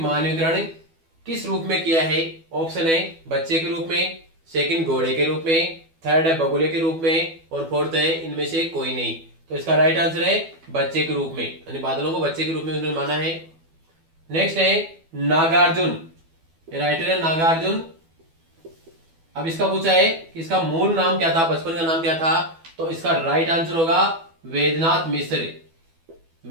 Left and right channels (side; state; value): left; late; 12 ms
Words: किस रूप में किया है? ऑप्शन है बच्चे के रूप में, सेकंड घोड़े के रूप में, थर्ड है बगुले के रूप में और फोर्थ है इनमें से कोई नहीं। तो इसका राइट आंसर है बच्चे के रूप में, यानी बादलों को बच्चे के रूप में उन्होंने माना है। नेक्स्ट है नागार्जुन, राइटर है नागार्जुन। अब इसका पूछा है कि इसका मूल नाम क्या था, बचपन का नाम क्या था? तो इसका राइट आंसर होगा वेदनाथ मिश्र।